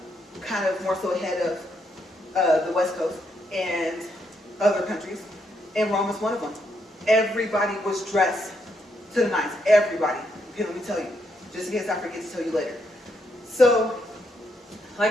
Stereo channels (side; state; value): both; normal; correlation 0.77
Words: Kind of more so ahead of the West Coast and other countries. And Rome was one of them. Everybody was dressed to the nines. Everybody. Okay, let me tell you. Just in case I forget to tell you later. So,